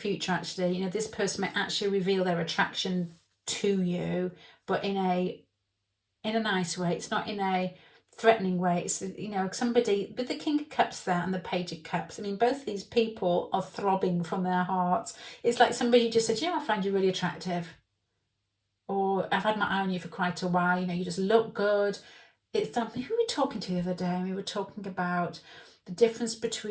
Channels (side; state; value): both; identical; correlation 1.00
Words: actually, this person might actually reveal their attraction to you, but in a nice way. It's not in a threatening way. It's, somebody with the King of Cups there and the Page of Cups. I mean, both these people are throbbing from their hearts. It's like somebody just said, I find you really attractive. Or I've had my eye on you for quite a while. You just look good. It's something, who were we talking to the other day? We were talking about the difference